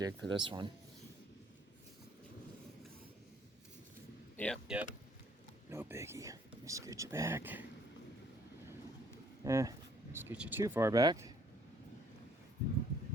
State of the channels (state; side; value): normal; both; correlation 0.62